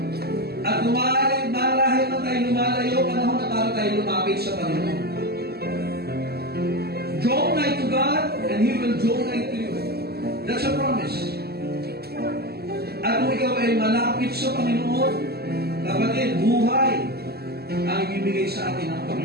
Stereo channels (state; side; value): late; left; 0.46 ms